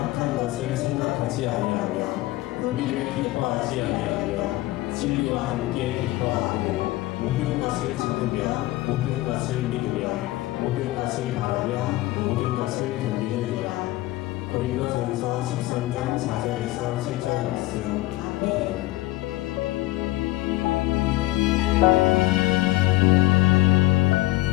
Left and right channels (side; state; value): right; quieter; 17.7 dB